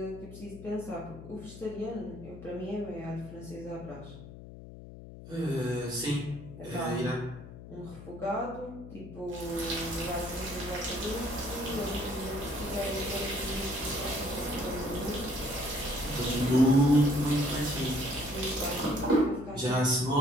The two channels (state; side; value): noise; left; hum, 14 dB below the sound